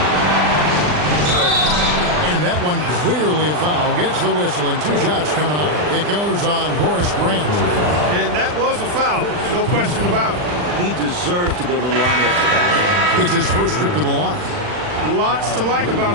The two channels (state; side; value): late; left; 40 ms